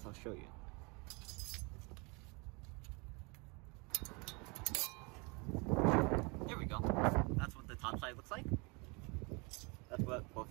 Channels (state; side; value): quieter; left; 29.9 dB